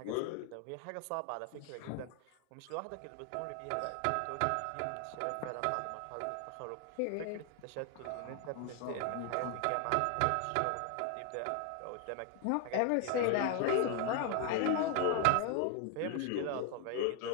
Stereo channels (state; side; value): different; both; correlation 0.01